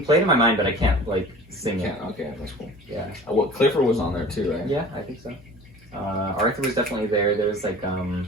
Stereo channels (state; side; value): normal; both; correlation 0.43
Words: play it in my mind, but I can't like sing it. Okay, that's cool. Yeah. Well, Clifford was on there too, right? Yeah, I think so. Arthur was definitely there. There was like